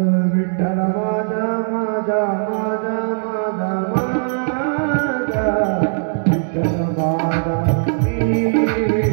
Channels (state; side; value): silent; left; digital silence